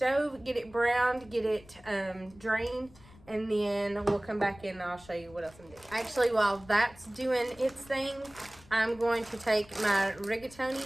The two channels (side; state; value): left; noise; rumble, 23 dB below the sound